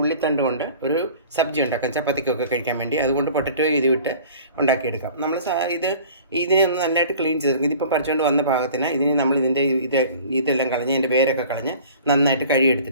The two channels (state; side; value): inverted; both; correlation -0.45